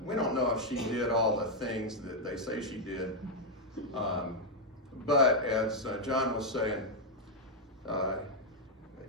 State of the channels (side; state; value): both; normal; correlation -0.01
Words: we don't know if she did all the things that they say she did, but as John was saying,